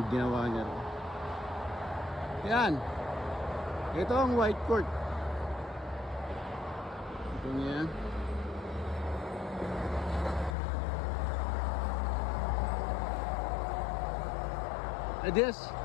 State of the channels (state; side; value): drops out; right; at 10.6 s